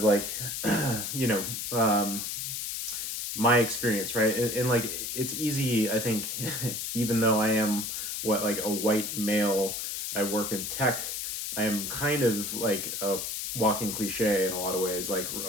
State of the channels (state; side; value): noise; left; hiss, 4 dB below the sound